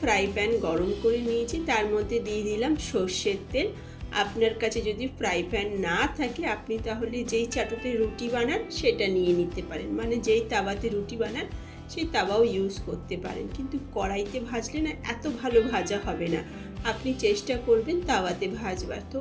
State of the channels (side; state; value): both; identical; correlation 1.00